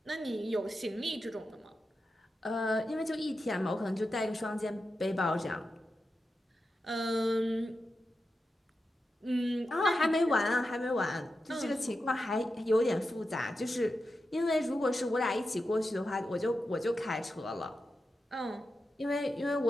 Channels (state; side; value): normal; both; correlation 0.90